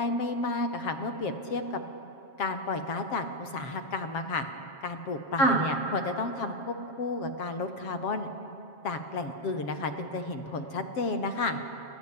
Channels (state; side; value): late; right; 7.4 ms